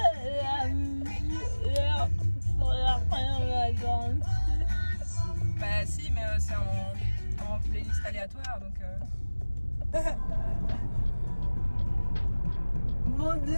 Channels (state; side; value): inverted; both; correlation -1.00